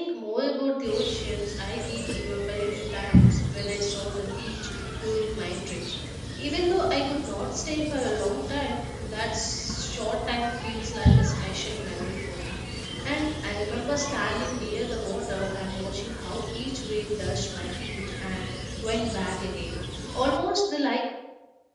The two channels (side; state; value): both; identical; correlation 1.00